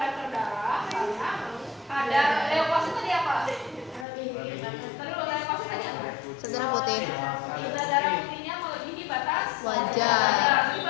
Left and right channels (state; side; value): drops out; right; at 4.0 s